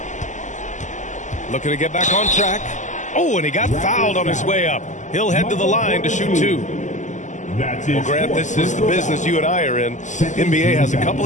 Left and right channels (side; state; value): right; late; 0.35 ms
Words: Looking to get back on track. Oh, and he got fouled on his way up. He'll head to the line to shoot 2. Well, Grant, this is the business you and I are in. NBA has a couple